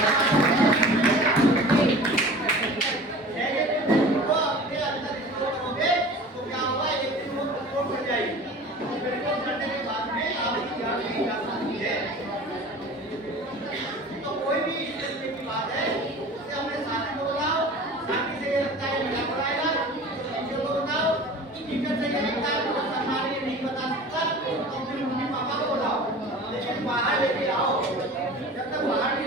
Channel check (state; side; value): normal; both; correlation 0.40